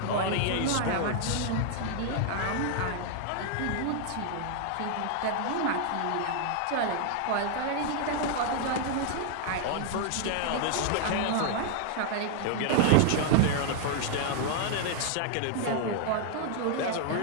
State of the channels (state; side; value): different; both; correlation 0.00